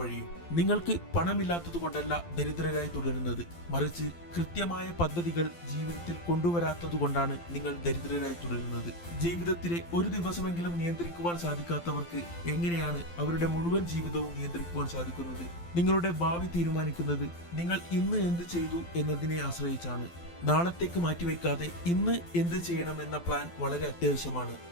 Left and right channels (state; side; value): late; right; 12 ms